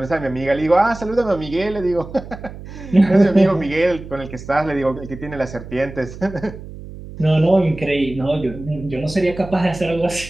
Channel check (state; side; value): noise; right; hum, 14 dB below the sound